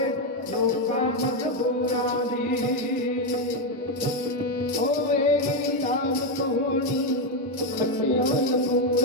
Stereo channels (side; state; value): both; normal; correlation 0.06